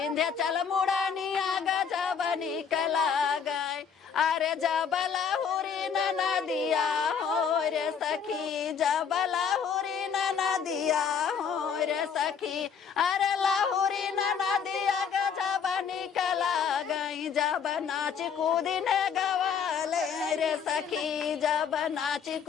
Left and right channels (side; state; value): right; quieter; 6.9 dB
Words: मुड़निया गजब निकला गए अरे जब लहुरी नदिया हो रे सखी जब लहुरी नदिया हो रे सखी अरे लहुरी नदिया गजब निकला गई जब नाच कूदिने गवाले रे सखी जब नाच